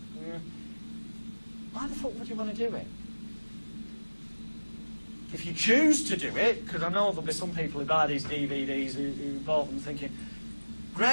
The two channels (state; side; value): inverted; both; correlation -1.00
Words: Why the fuck would you want to do it? If you choose to do it, because I know there'll be some people who buy these DVDs who bought them thinking,